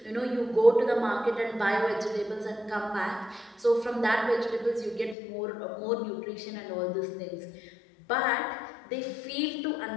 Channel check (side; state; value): right; drops out; at 5.2 s